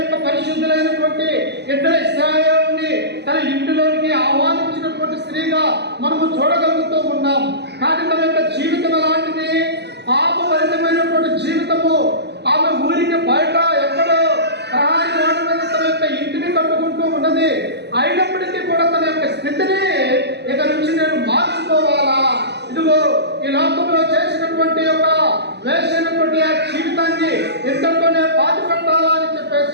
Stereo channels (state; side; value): late; left; 0.49 ms